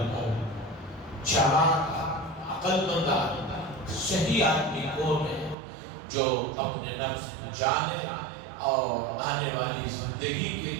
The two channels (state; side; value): drops out; left; at 5.6 s